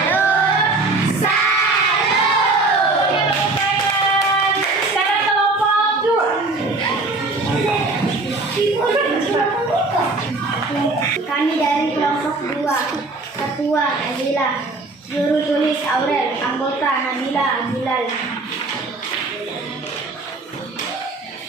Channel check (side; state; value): left; quieter; 3.3 dB